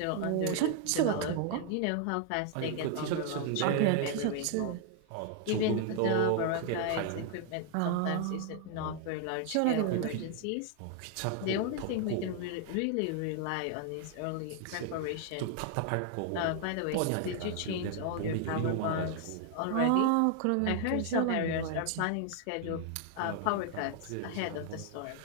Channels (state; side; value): different; both; correlation 0.00